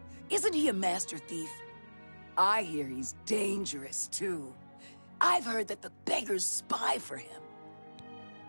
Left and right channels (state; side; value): inverted; both; correlation -1.00